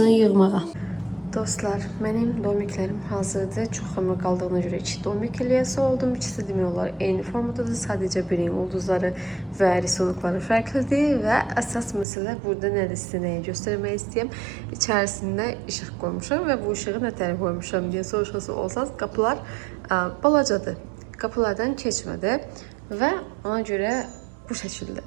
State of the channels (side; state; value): left; drops out; at 12.1 s